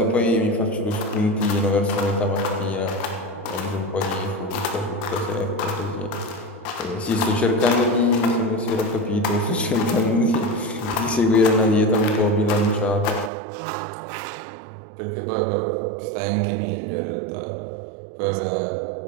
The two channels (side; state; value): left; drops out; at 13.3 s